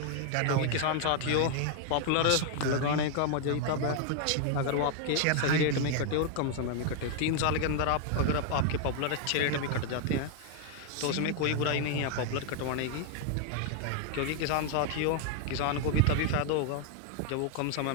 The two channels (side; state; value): both; different; correlation 0.00